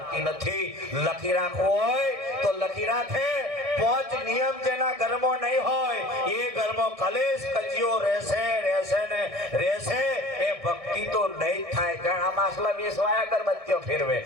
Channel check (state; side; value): late; left; 1.6 ms